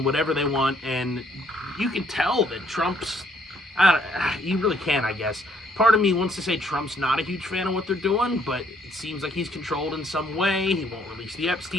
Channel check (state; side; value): normal; both; correlation 0.67